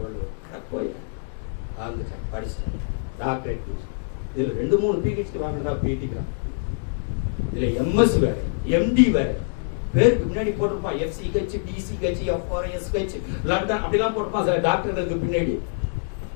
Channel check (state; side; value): silent; right; digital silence